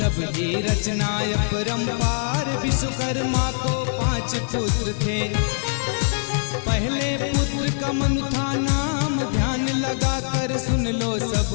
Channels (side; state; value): right; silent; digital silence